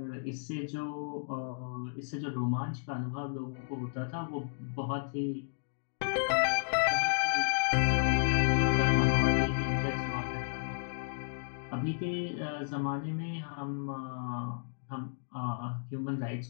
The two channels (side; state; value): right; silent; digital silence